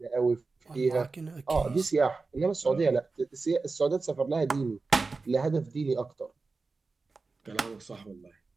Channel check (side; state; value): left; quieter; 4.0 dB